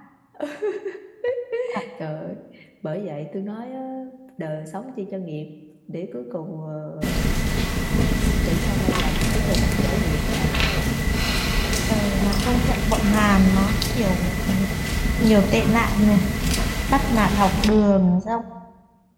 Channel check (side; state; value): both; identical; correlation 1.00